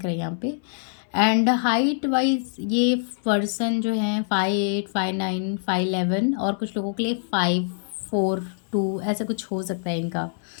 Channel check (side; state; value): right; silent; 62 dB below the other